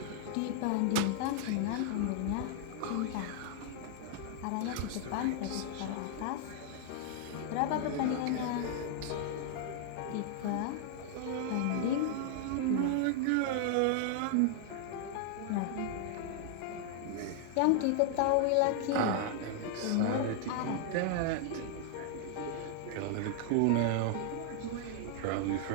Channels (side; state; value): both; different; correlation 0.00